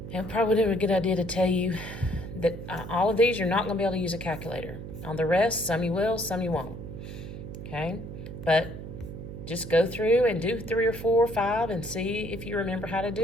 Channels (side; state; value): right; noise; hum, 10 dB below the sound